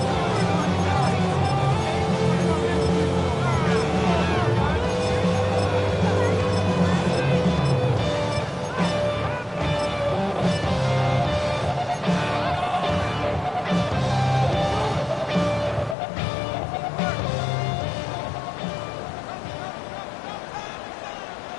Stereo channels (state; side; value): drops out; right; at 16.0 s